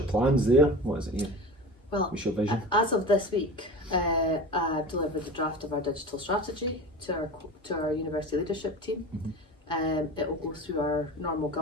plans there? What is it here? Well, what's your vision? As of this week, I've delivered the draft of our digital strategy to our university leadership team. It will go through our normal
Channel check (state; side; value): normal; both; correlation 0.33